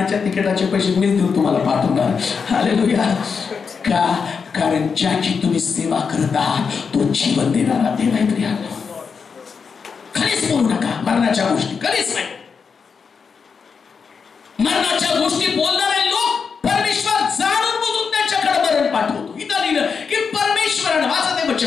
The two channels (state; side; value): quieter; right; 5.8 dB